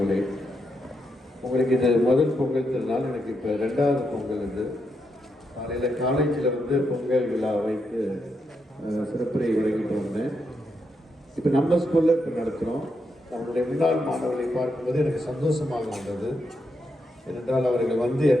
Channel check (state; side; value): normal; both; correlation 0.82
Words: உங்களுக்கு இது முதல் பொங்கல் திருநாள். எனக்கு இப்போ 2வது பொங்கல். இது காலையில் காலேஜில் வந்து பொங்கல் விழா வைத்து சிறப்புரை வழங்கிட்டு வந்தேன். இப்போ நம்ம ஸ்கூலில் இப்போ நடத்துகிறோம். நம்மளுடைய முன்னாள் மாணவர்களை பார்க்கும்போது எனக்கு சந்தோஷமாக இருந்தது. ஏனென்றால் அவர்கள் வந்து